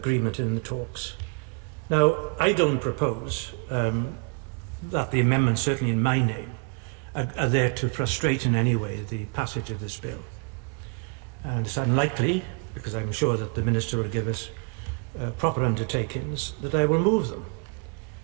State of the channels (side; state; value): left; quieter; 34.5 dB